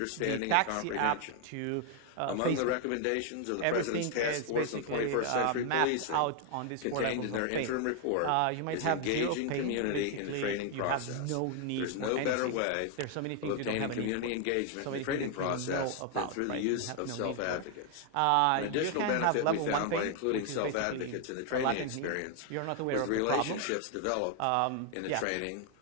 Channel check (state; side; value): different; both; correlation 0.00